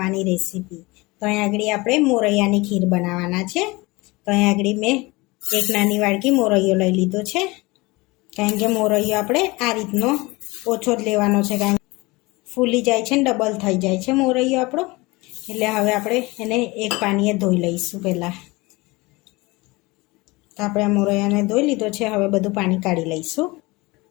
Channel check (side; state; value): right; quieter; 23.2 dB